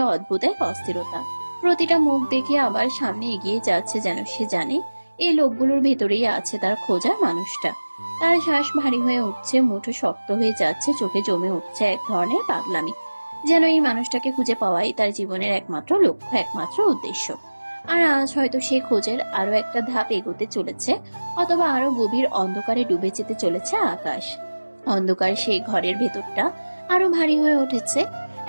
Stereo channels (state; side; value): inverted; both; correlation -1.00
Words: অদ্ভুত এক অস্থিরতা। প্রতিটা মুখ দেখে আবার সামনে এগিয়ে যাচ্ছে, যেন সে জানে এই লোকগুলোর ভেতরেই আছে তার খোঁজার মানুষটা। তার শ্বাস ভারী হয়ে উঠছে, মুঠো শক্ত হয়ে যাচ্ছে, চোখে জমে উঠছে এক ধরনের পাগলামি, যেন এই মানুষটাকে খুঁজে পাওয়াই তার জীবনের একমাত্র লক্ষ্য, একমাত্র উদ্দেশ্য। আর আজ হয়তো সে খোঁজের আরো একটা ধাপ এগোতে চলেছে, অথবা আরো গভীর অন্ধকারে ডুবে যেতে চলেছে আকাশ। অন্ধকার সেই ঘরের ভেতরটা আরো ভারী হয়ে উঠেছে।